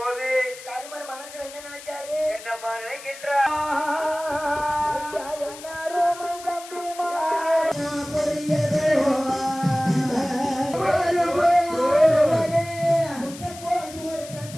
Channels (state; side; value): noise; left; hiss, 15 dB below the sound